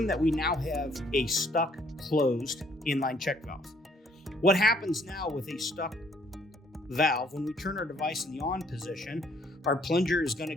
that we now have a stuck closed inline check valve. What happens now with a stuck valve, when we turn our device in the on position, our plunger is going to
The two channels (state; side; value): normal; both; correlation 0.64